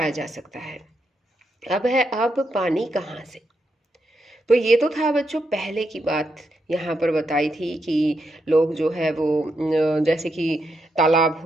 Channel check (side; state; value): both; normal; correlation 0.82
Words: जा सकता है। अब पानी कहाँ से? तो ये तो था बच्चों पहले की बात, यहाँ पर बताई थी कि लोग जो है वो जैसे कि तालाब